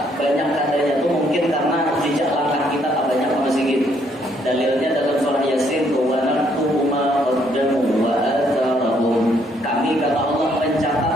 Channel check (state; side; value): normal; both; correlation 0.69